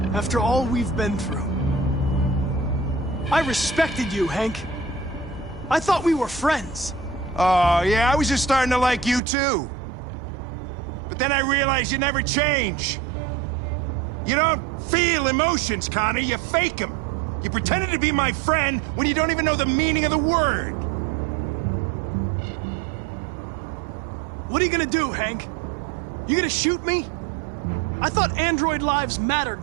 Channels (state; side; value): drops out; left; at 9.2 s